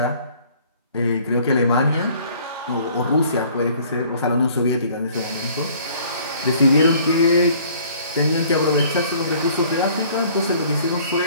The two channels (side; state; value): both; inverted; correlation -0.55